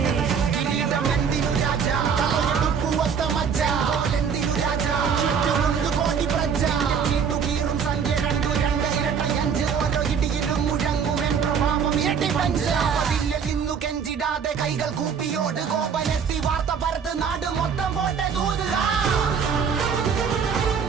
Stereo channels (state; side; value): quieter; left; 6.6 dB